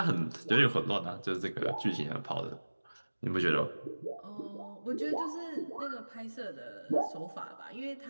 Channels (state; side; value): inverted; both; correlation -1.00